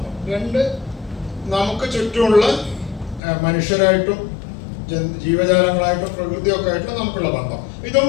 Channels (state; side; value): drops out; right; at 3.2 s